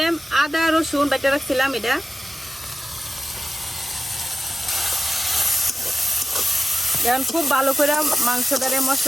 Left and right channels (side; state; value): both; normal; correlation 0.94